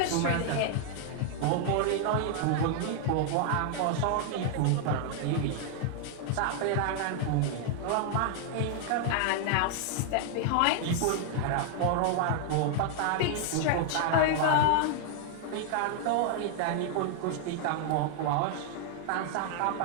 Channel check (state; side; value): different; both; correlation 0.00